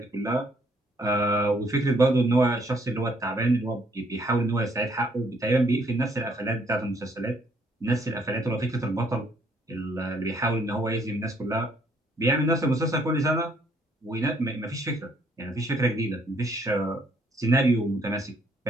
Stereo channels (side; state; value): both; normal; correlation 0.67